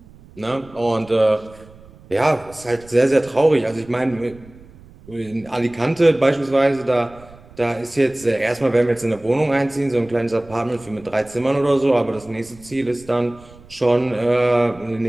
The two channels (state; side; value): noise; right; rumble, 23 dB below the sound